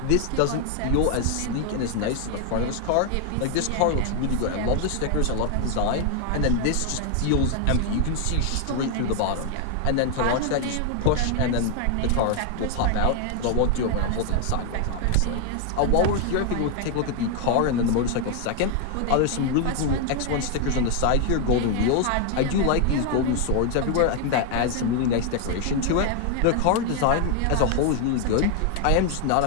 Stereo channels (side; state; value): both; different; correlation 0.00